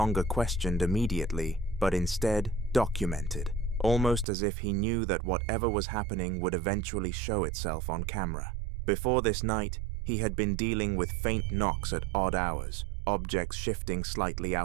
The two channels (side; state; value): left; drops out; at 4.2 s